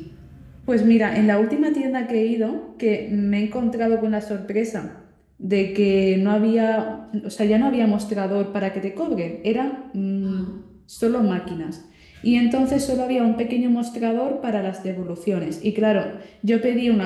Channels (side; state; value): both; identical; correlation 1.00